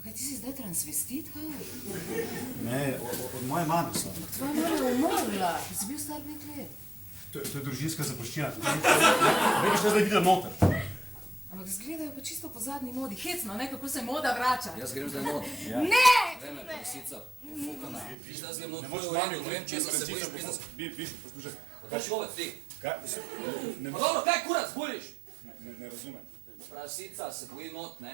kaj ti si zdaj transvestit, kaj? Ne, od moje mame so. Tvoja mama je umrla, ti si bil star 5 let. To je družinska zapuščina. Ne bi šla zdaj videla noter. Ampak zgledajo pa čisto po zadnji modi. Hecno, ne, kako se moda vrača. Jaz grem zdaj not. Ne! Vreme, prosica. Fukana. Viš, da grem not, Ne to moreš je v redu, ne vem, če se bojiš pisati. Biš, poslušaj. Kaj človek ti? Kaj? Pa dobro, kaj kurac buliš? Ne razumem. Prasica se boji not,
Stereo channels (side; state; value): left; drops out; at 18.2 s